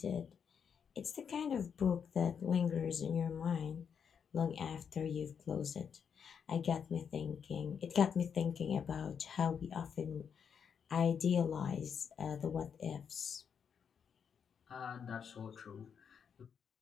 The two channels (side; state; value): right; quieter; 7.1 dB